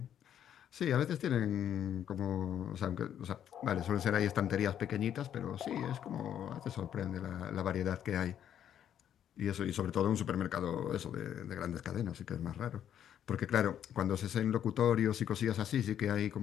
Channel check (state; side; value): quieter; right; 9.9 dB